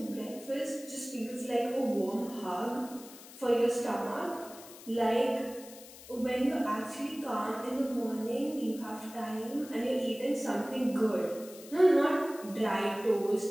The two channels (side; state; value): left; noise; hiss, 18 dB below the sound